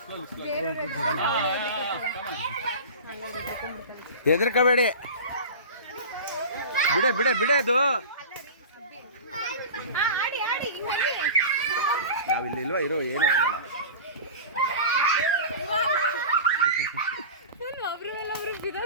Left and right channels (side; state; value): both; inverted; correlation -0.33